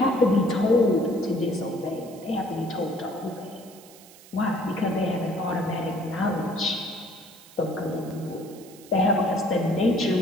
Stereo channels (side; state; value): right; noise; hiss, 22 dB below the sound